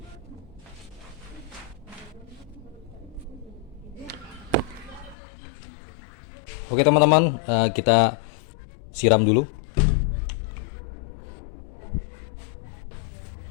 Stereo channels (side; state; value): right; drops out; at 5.2 s